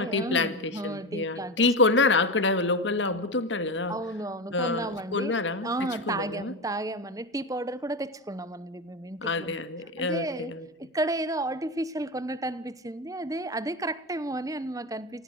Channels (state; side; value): normal; both; correlation 0.19